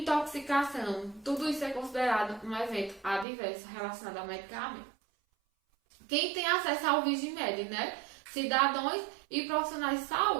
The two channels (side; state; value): left; drops out; at 3.2 s